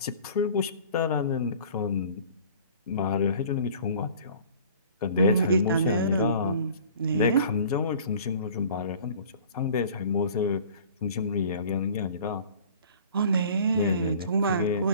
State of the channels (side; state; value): both; inverted; correlation -0.47